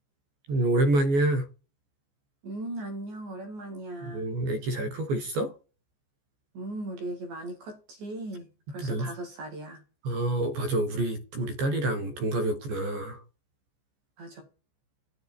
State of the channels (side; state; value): left; late; 14 ms